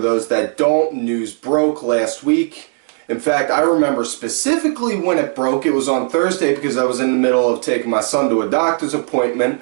that don't, news broke last week. In fact, I remember specifically when it broke. It was on Thursday because I was in the middle of taking my son to a doctor's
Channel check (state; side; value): silent; left; 59 dB below the other